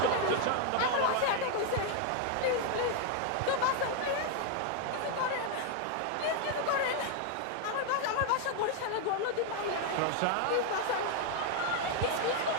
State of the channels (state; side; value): different; both; correlation 0.01